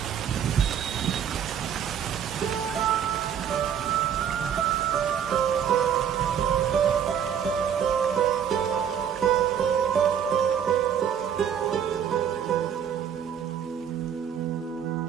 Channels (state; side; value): quieter; left; 8.5 dB